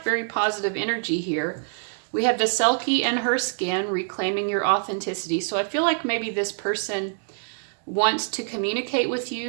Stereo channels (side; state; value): left; silent; digital silence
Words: very positive energy here. We have the Selkie and her skin, reclaiming your authenticity. So I feel like maybe this person wants to communicate with